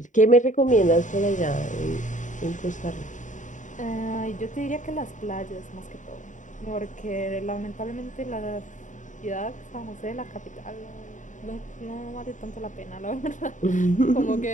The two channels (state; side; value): late; right; 0.36 ms